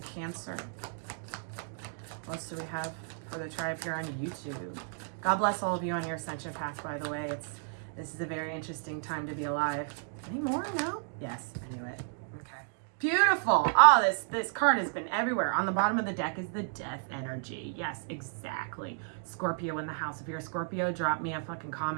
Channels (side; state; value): left; silent; digital silence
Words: Cancer. What else do we have for the tribe here on YouTube? God bless all of you on your ascension path, by the way. This is a very interesting time to be alive. Any more? No? Yes, I knew it. Okay. Beautiful. Oh, this card has been everywhere. On the bottom of the deck is the death energy. Yes, exactly. Scorpio in the house. If you're a Scorpio, drop me a fucking